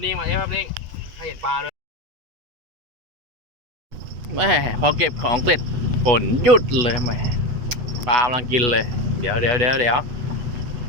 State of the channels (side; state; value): left; late; 8.1 ms